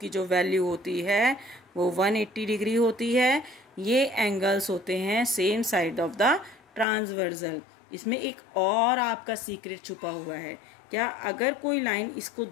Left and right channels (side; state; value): right; drops out; at 6.9 s